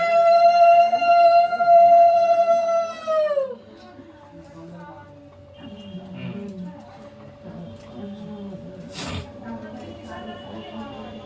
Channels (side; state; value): both; identical; correlation 1.00